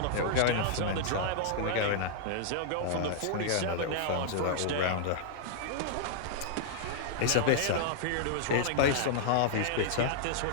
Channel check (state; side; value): different; both; correlation -0.01